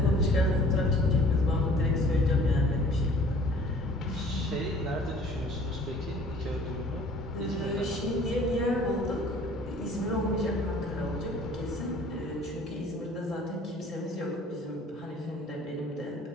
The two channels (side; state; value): both; normal; correlation 0.52